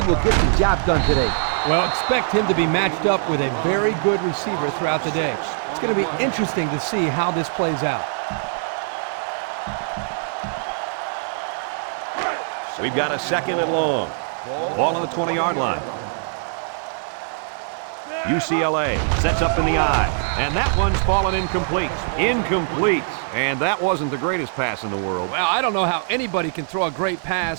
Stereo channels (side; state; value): left; silent; digital silence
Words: will get the job done today. Well, expect him to be matched up with a very good receiver throughout the day. It's going to be interesting to see how this plays out. We've got a 2nd and long. Ball on the 20-yard line. UCLA sets up in the eye, and that one's fallen incomplete. Incomplete, and that wasn't the greatest pass in the world. Well, I don't know how anybody can throw a great